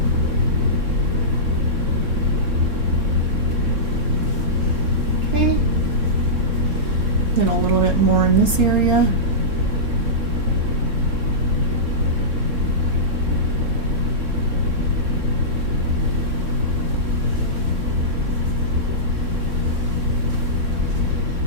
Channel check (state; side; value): late; left; 3.6 ms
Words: Okay. Then a little bit more in this area.